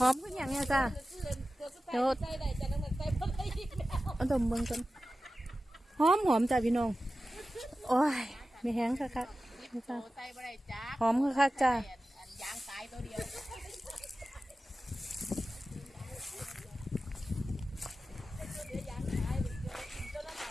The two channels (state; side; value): normal; both; correlation 0.94